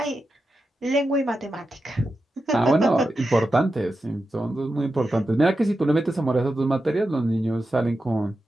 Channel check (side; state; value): both; normal; correlation 0.90